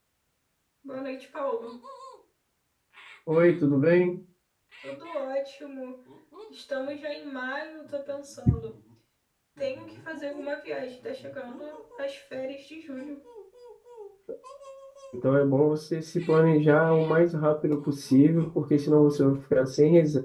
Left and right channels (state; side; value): identical; both; correlation 1.00